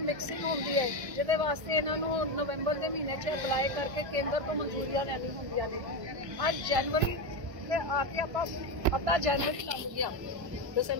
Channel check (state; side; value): late; left; 1.4 ms